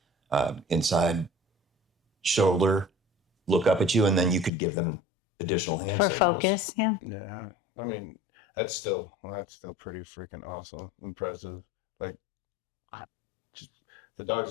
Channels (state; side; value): drops out; right; at 4.5 s